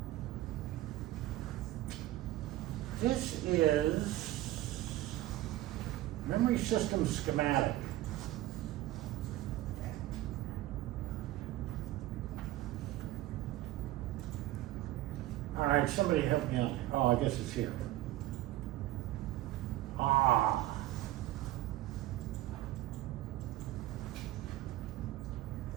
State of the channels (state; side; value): quieter; left; 15.8 dB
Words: This is memory system schematic. All right, somebody help me out. Oh, I guess it's here. Ah.